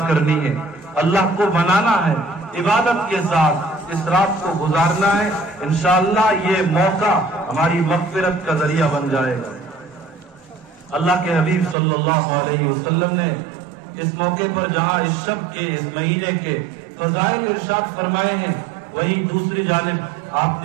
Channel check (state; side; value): drops out; left; at 11.8 s